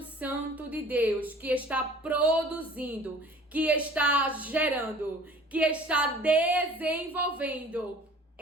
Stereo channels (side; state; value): both; normal; correlation 0.48